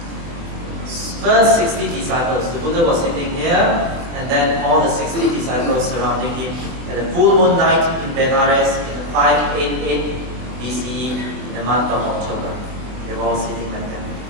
First 60 disciples, the Buddha was sitting here, and then all the 60 disciples surrounding him. At the full moon night in Benares in 588 BCE, in the month of October. They were all sitting like that.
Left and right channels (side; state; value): left; late; 24 ms